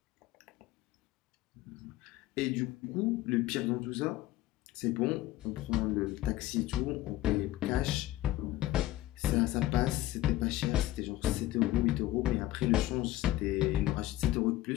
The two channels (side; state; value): right; quieter; 15.6 dB